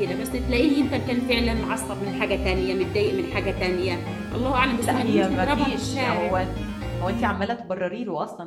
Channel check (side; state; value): both; identical; correlation 1.00